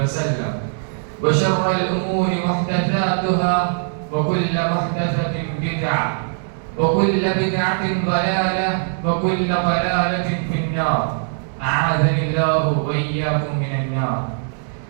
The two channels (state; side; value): silent; left; digital silence